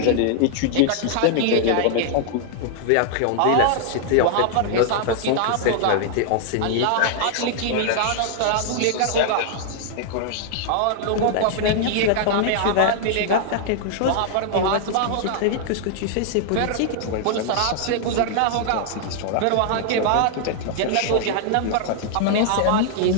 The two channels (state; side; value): different; both; correlation 0.00